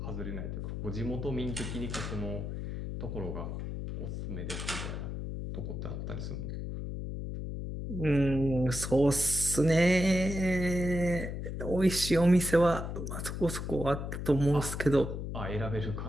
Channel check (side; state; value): left; noise; hum, 5 dB below the sound